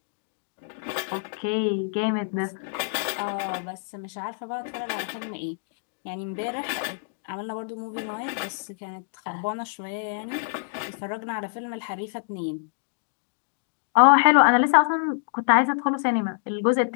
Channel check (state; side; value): silent; right; digital silence